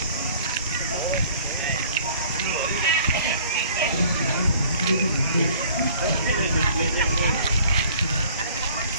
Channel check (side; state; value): both; inverted; correlation -0.53